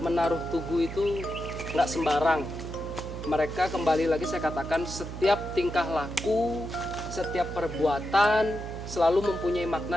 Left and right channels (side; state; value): right; noise; hum, 9 dB below the sound